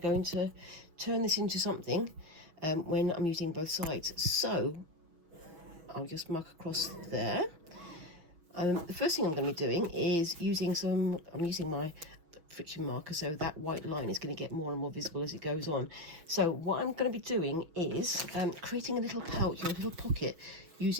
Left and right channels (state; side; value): late; left; 6.2 ms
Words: to turn this into something when I'm using both sides? So I'll just mark across there. The first thing I'm going to be doing is I'm using my friction marker, so that white line is going to get more and more visible as it goes on. So what I'm going to be doing is creating a little pouch or a little pocket